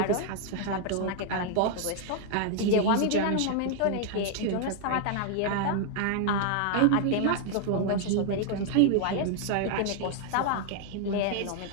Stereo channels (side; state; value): both; different; correlation 0.00